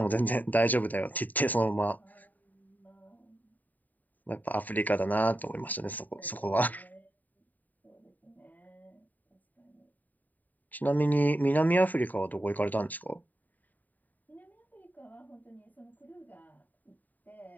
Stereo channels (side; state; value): right; late; 0.083 ms